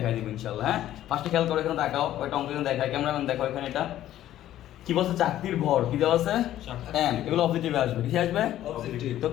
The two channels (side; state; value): right; quieter; 12.8 dB